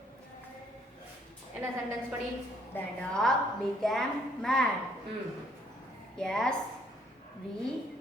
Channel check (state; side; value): normal; both; correlation 0.66